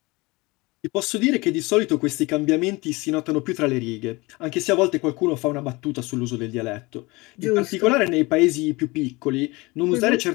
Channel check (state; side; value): quieter; right; 23.7 dB